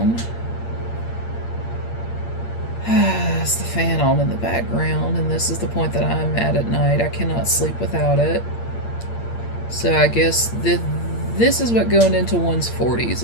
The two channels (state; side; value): late; right; 8.7 ms